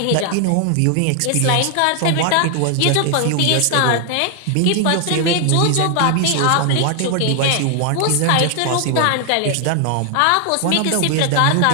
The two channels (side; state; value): both; different; correlation 0.00